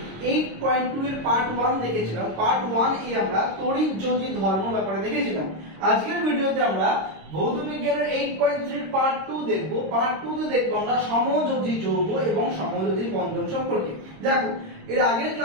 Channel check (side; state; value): left; late; 26 ms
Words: 8.2 এর পার্ট 1 দেখেছিলাম। পার্ট 1 এ আমরা তড়িৎ-যোজী ধর্ম ব্যাপারে দেখেছিলাম। আজকের ভিডিওতে আমরা ভৌত বিজ্ঞানের 8.3 এর পার্ট 2 দেখব। পার্ট 2 তে দেখব আমরা সমযোজী যৌগ এবং সমযোজী বন্ধন সম্পর্কে। দেখো, এর আগের